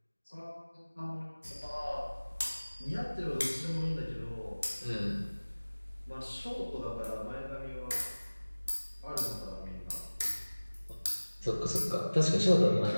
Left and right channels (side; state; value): both; inverted; correlation -1.00